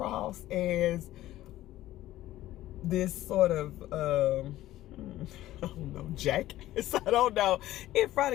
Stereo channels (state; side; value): quieter; right; 14.9 dB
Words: as this sort of I don't know, jackass. I don't know, in front